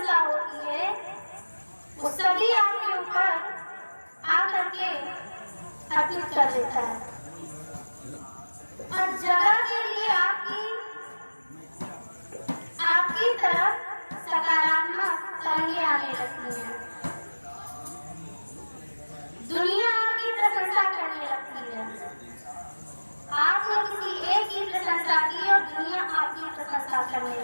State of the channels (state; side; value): inverted; both; correlation -1.00